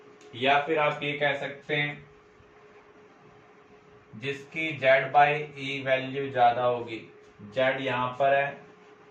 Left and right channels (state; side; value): identical; both; correlation 1.00